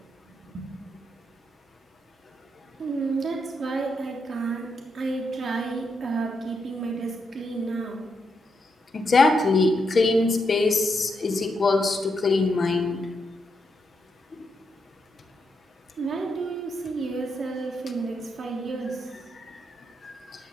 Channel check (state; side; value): normal; both; correlation 0.81